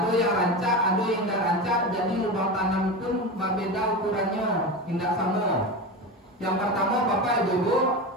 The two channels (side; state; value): both; normal; correlation 0.23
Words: yang rancak, ada yang tidak rancak. Jadi lubang tanam pun berbeda ukurannya, tidak sama. Yang pertama bapak ibu